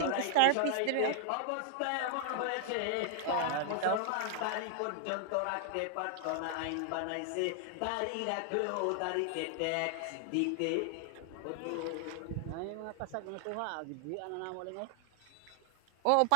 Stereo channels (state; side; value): different; both; correlation 0.00